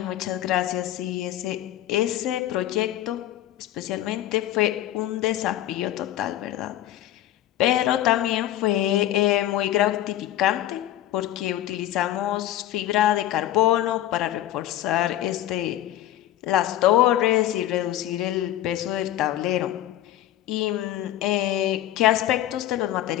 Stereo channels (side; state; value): right; quieter; 13.3 dB